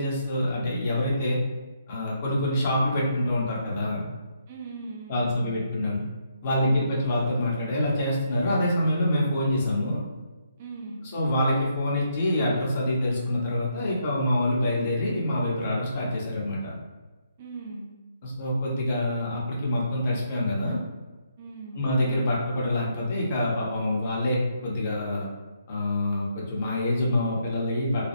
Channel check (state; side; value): inverted; both; correlation -0.76